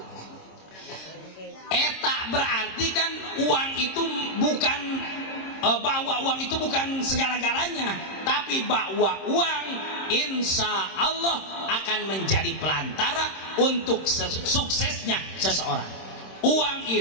Eta berarti kan uang itu bukan bahwa uang itu bukan segala-galanya, tapi bahwa uang insya Allah akan menjadi pelantara untuk suksesnya seseorang. Uang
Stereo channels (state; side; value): late; right; 26 ms